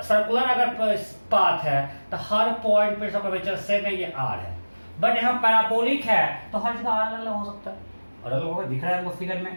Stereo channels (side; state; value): both; inverted; correlation -1.00